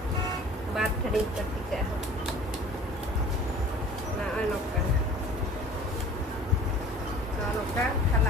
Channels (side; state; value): both; normal; correlation 0.46